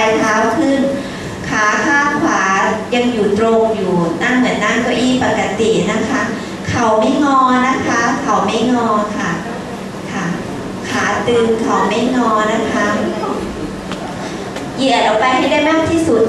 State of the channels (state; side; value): identical; both; correlation 1.00